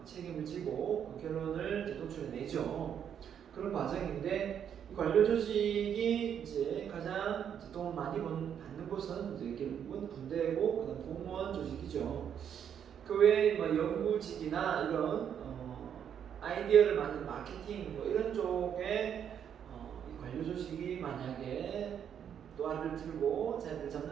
책임을 지고 그 결론을 도출해내죠. 그런 과정인데 이 관료 조직이 이제 가장 돈 많이 받는 곳은 이제 결국은 군대고 그다음 공무원 조직이죠. 그 외에 연구직이나 이런 아이디어를 만든 마케팅 이런 쪽에 이 관료 조직이 만약에 노하를 들고 자리를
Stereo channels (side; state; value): left; quieter; 8.6 dB